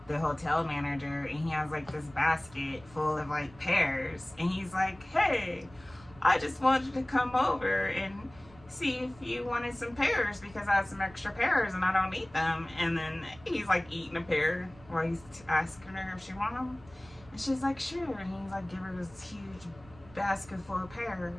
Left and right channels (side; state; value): right; noise; rumble, 23 dB below the sound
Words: the hotel manager, and he has like this basket full of like pears, and he's like, hey, I just wanted to come over and see if you wanted some pears because I have some extra pears and I don't eat them. And then he's like eating a pear while he's asking her if she wants them, and she's like, sure. And he's like, give her this huge basket full of